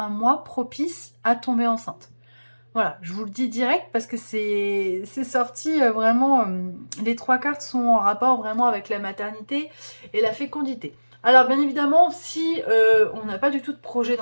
mois propice à tomber enceinte. Voilà, je vous le dis direct parce que c'est sorti vraiment, les trois cartes sont en rapport vraiment avec la maternité et la fécondité. Alors bien évidemment, si on n'a pas du tout de projet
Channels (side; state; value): both; inverted; correlation -1.00